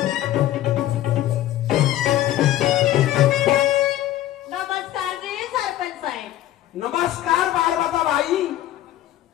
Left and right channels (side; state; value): right; quieter; 13.6 dB